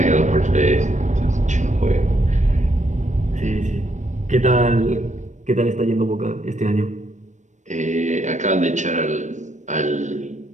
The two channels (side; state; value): left; late; 0.35 ms